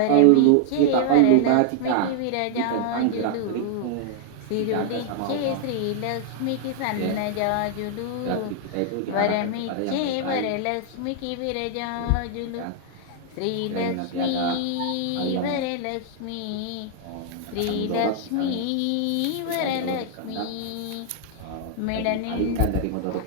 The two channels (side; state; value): both; different; correlation 0.00